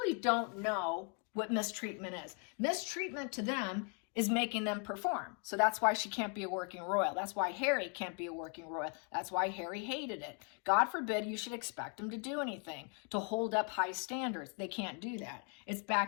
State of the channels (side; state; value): right; quieter; 36.9 dB